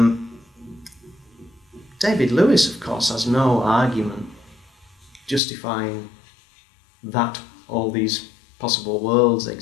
David Lewis, of course, has no argument justifying that all these possible worlds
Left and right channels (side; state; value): right; drops out; at 5.4 s